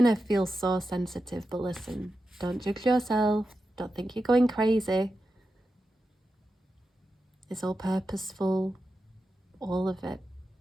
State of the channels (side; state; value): both; normal; correlation 0.90